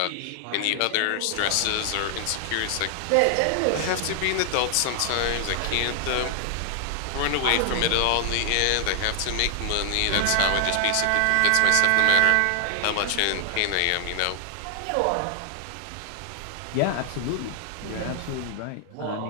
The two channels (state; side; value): different; both; correlation 0.00